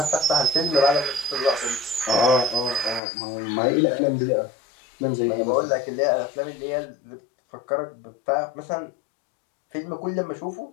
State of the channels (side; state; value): right; drops out; at 3.0 s